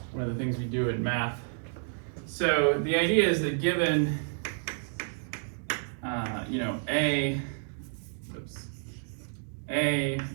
one of the things we do in math. So the idea is that given, you know, A,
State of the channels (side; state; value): left; silent; digital silence